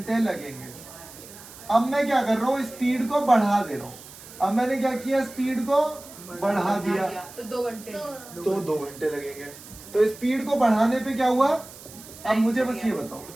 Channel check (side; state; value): right; noise; hiss, 17 dB below the sound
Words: लगेंगे। अब मैं क्या कर रहा हूँ? स्पीड को बढ़ा दे रहा हूँ। अब मैंने क्या किया? स्पीड को बढ़ा दिया तो 2 घंटे। तो 2 घंटे लगेंगे। तो स्पीड को बढ़ाने पे क्या हुआ? अब मुझे बस ये बताओ,